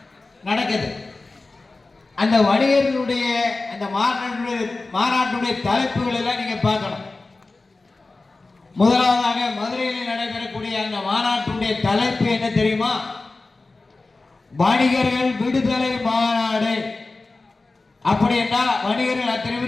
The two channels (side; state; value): right; quieter; 3.4 dB